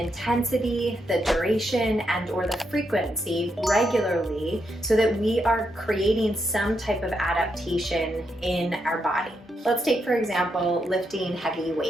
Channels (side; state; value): both; normal; correlation 0.81